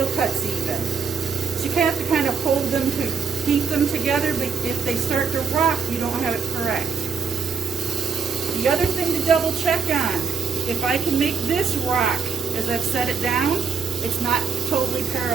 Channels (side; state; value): left; quieter; 5.9 dB